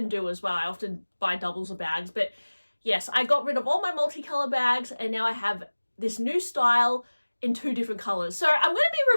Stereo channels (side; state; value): both; inverted; correlation -1.00